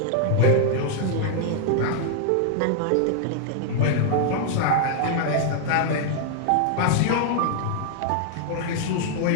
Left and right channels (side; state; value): both; different; correlation -0.01